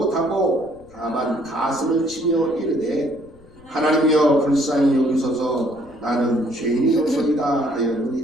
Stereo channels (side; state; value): left; noise; rumble, 25 dB below the sound